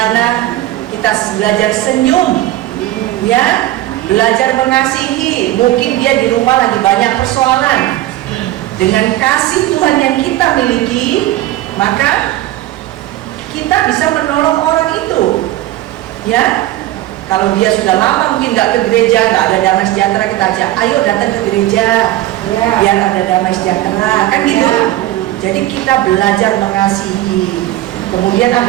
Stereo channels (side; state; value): left; quieter; 15.2 dB